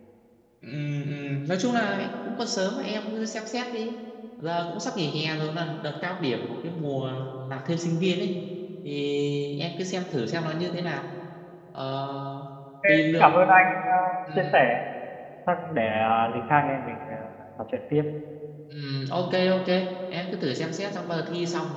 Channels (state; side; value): identical; both; correlation 1.00